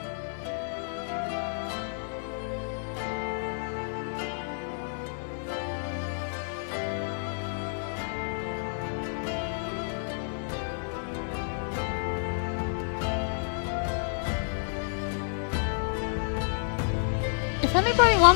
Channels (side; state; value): right; silent; 58 dB below the other